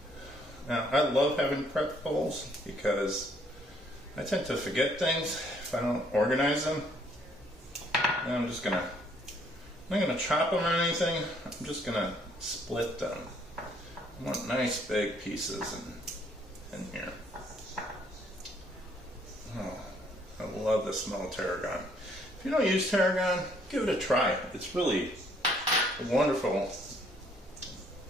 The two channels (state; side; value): normal; both; correlation 0.65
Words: Now, I love having prep bowls because I tend to forget things if I don't organize them. And I'm not gonna chop them or anything. I'm just gonna split them. I want nice big pieces in here. Oh, I love the smell of tarragon. If you don't use tarragon, give it a try. It's really a wonderful